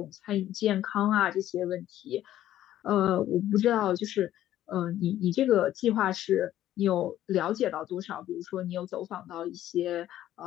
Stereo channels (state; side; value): quieter; right; 12.8 dB